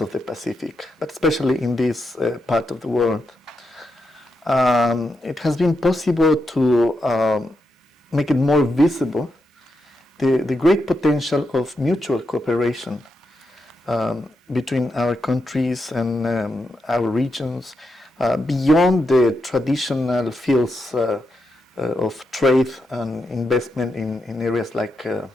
the Pacific, but especially in this part of the world. It has been possible to make it more visible the great potential of mutual cooperation between our countries and our regions beyond the traditional fields of trade and investment in areas like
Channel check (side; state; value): both; normal; correlation 0.85